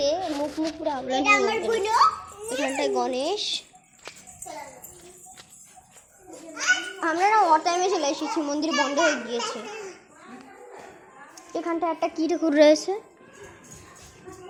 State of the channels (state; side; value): identical; both; correlation 1.00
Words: মুখ মুখ পুরো আমরা। এখানটায় গণেশ। আমরা না ওর টাইমে চলে এসেছি, মন্দির বন্ধ হয়ে গিয়েছে। এখানটা একটা কি ঠাকুর রয়েছে,